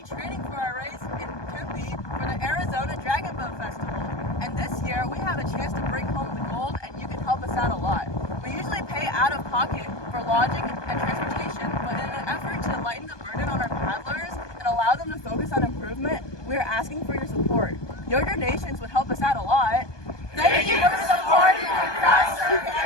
training for our race in Tempe for the Arizona Dragon Boat Festival. And this year, we have a chance to bring home the gold, and you can help us out a lot. We usually pay out of pocket for lodging and transportation, but in an effort to lighten the burden on our paddlers and allow them to focus on improvement, we are asking for your support. Your donations would help us out a lot. Thank you for supporting our Crowdsurf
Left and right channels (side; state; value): right; late; 1.2 ms